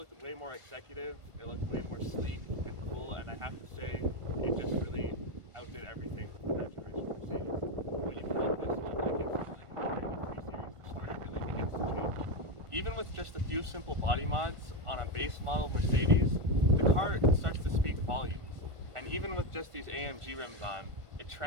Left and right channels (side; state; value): left; late; 1.4 ms